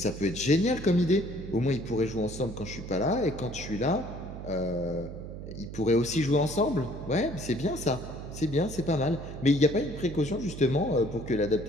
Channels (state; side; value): noise; right; hum, 10 dB below the sound